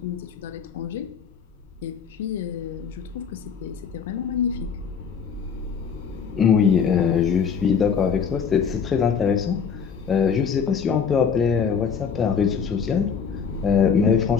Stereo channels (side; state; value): right; quieter; 6.6 dB